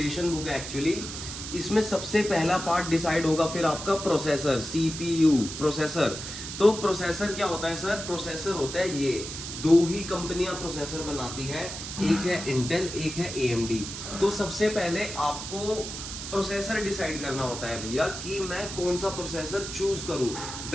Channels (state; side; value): noise; right; hiss, 8 dB below the sound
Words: बुक है एक्चुअली। इसमें सबसे पहला पार्ट डिसाइड होगा फिर आपका प्रोसेसर, CPU प्रोसेसर। तो प्रोसेसर क्या होता है सर? प्रोसेसर होता है ये, दो ही कंपनियां प्रोसेसर बनाती है, एक है इंटेल, एक है AMD। तो सबसे पहले आपको प्रोसेसर डिसाइड करना होता है भैया कि मैं कौन सा प्रोसेसर चूज करूं,